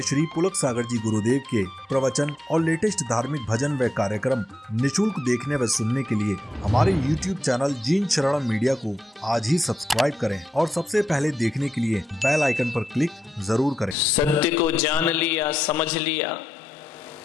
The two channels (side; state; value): both; normal; correlation 0.86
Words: श्री पुलक सागर जी गुरुदेव के प्रवचन और लेटेस्ट धार्मिक भजन व कार्यक्रम निशुल्क देखने व सुनने के लिए हमारे YouTube चैनल जीन शरणम मीडिया को आज ही सब्सक्राइब करें और सबसे पहले देखने के लिए बेल आइकन पर क्लिक जरूर करें। सत्य को जान लिया, समझ लिया,